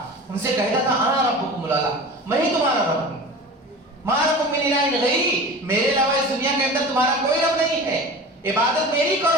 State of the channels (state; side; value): normal; both; correlation 0.35